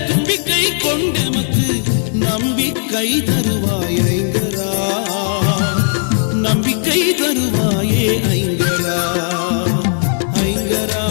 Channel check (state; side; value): silent; right; digital silence